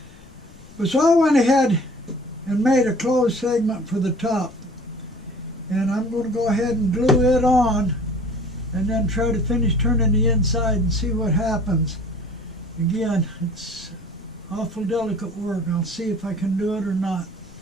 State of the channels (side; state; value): left; noise; rumble, 23 dB below the sound